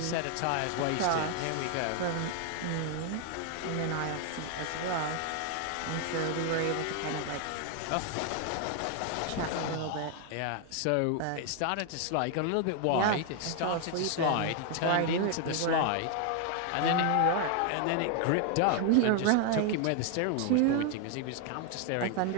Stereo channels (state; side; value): different; both; correlation 0.00